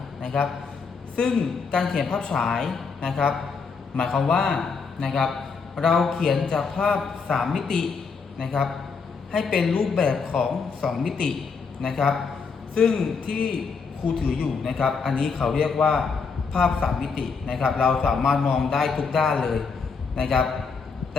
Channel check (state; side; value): quieter; right; 5.2 dB